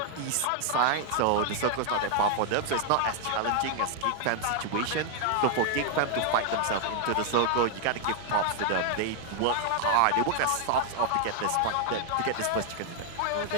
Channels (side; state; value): both; different; correlation 0.00